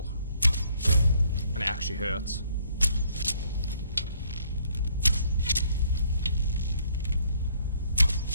and it actually hurts.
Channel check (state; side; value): inverted; both; correlation -0.66